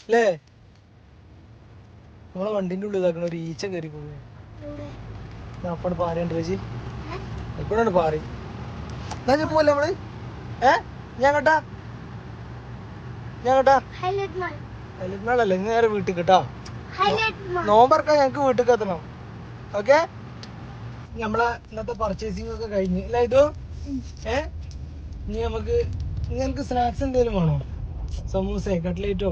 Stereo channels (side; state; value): both; identical; correlation 1.00